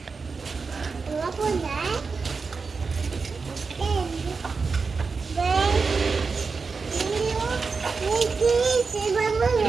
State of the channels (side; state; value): left; quieter; 4.7 dB